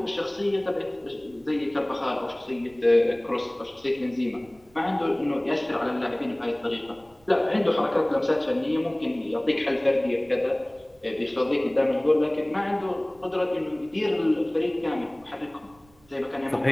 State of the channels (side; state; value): right; noise; rumble, 30 dB below the sound